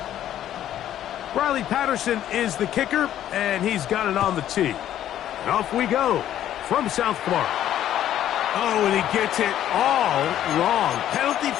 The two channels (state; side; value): quieter; right; 11.6 dB